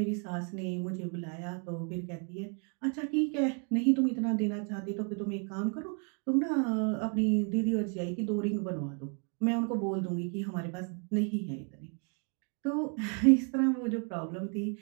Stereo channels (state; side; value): quieter; left; 38.5 dB